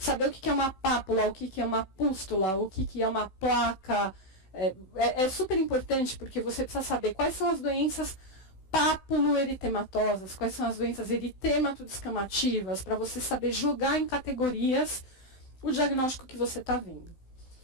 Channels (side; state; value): right; late; 16 ms